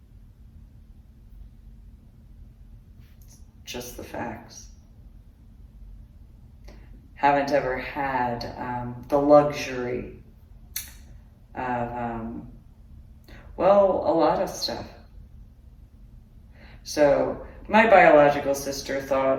Just the facts. Haven't ever had the luxury of, a lot of stuff. So my biological sister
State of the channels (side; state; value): both; identical; correlation 1.00